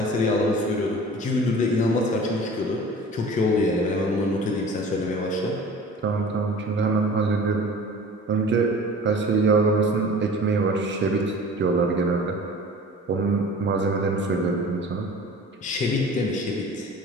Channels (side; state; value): both; normal; correlation 0.42